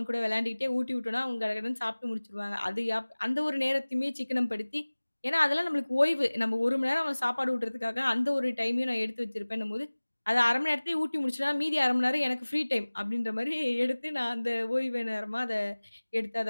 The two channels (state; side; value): inverted; both; correlation -1.00